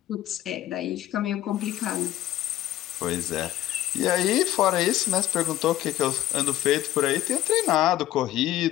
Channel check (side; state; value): right; quieter; 13.7 dB